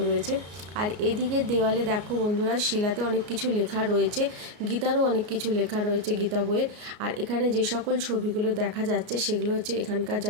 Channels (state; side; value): late; left; 33 ms